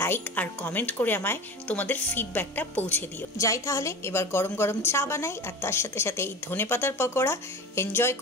লাইক আর কমেন্ট করে আমায় তোমাদের ফিডব্যাকটা পৌঁছে দিও। যাই তাহলে এবার গরম গরম চা বানাই, আর তার সাথে সাথে এই ধনেপাতার পকোড়া এনজয়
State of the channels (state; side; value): normal; both; correlation 0.32